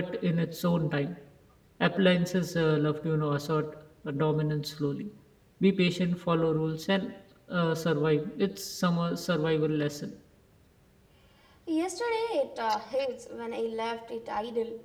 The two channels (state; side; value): identical; both; correlation 1.00